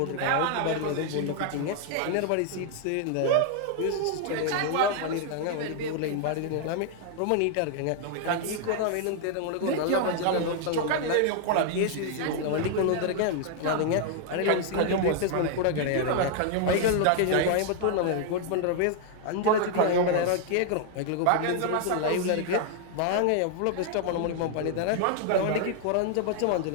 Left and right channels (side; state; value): both; different; correlation 0.00